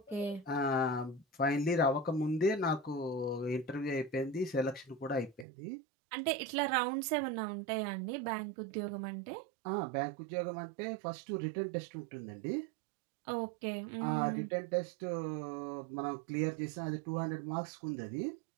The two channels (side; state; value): left; drops out; at 5.5 s